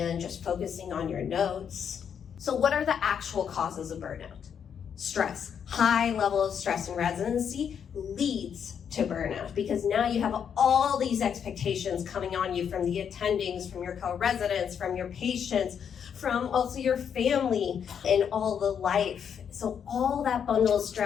just focusing on your notes. So what are the actual causes of burnout? Stress. High level of stress in residency leads to burnout because now you have all these expectations coming on you from the attendings, from your co-residents, from your patients, from also your family and all the life. So all that bundle of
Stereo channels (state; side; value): quieter; right; 7.8 dB